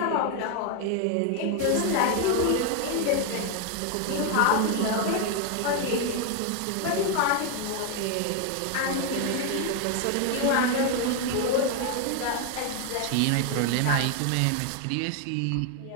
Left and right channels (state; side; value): different; both; correlation 0.01